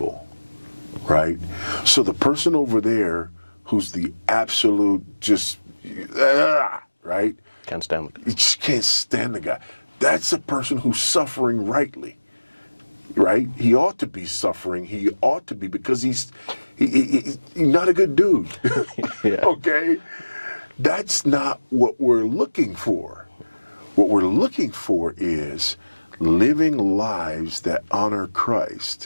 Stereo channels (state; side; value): inverted; both; correlation -1.00